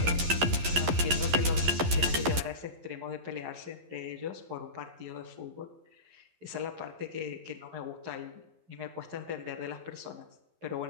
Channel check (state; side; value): late; left; 11 ms